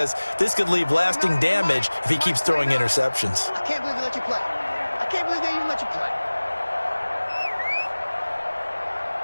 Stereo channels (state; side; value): inverted; both; correlation -1.00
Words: this could leave lasting damage if he keeps throwing interceptions. I can't believe they let you play. I can't believe they even let you play.